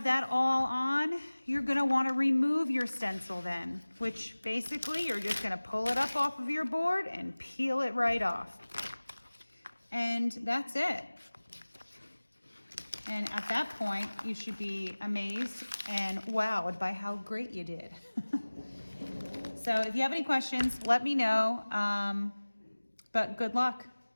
that all on, you're gonna wanna remove your stencil then, which basically you're just gonna pull it up off of your board and peel it right off. And that's it. And at that point, you should be amazed and wowed by how great you did. So if you have any questions, let me know, but good luck.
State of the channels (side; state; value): both; inverted; correlation -1.00